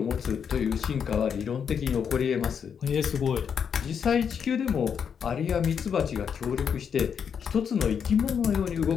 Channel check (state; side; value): quieter; right; 7.2 dB